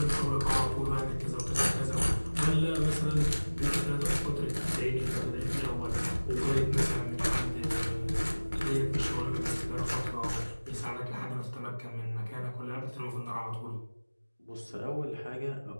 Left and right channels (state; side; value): inverted; both; correlation -1.00